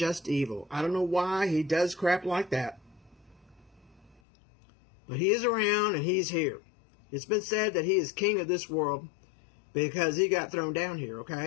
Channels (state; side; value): drops out; right; at 4.2 s